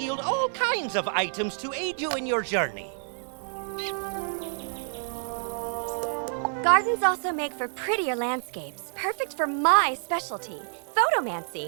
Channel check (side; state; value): left; silent; digital silence